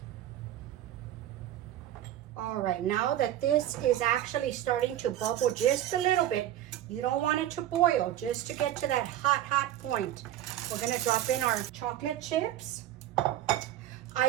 All right, now that this is actually starting to bubble just a little bit, You don't want it to boil, just to get to that hot point. We're gonna drop in our chocolate chips. I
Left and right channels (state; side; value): quieter; left; 12.5 dB